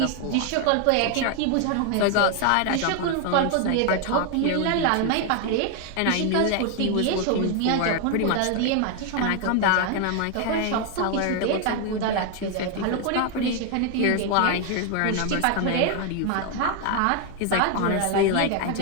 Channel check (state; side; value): different; both; correlation 0.01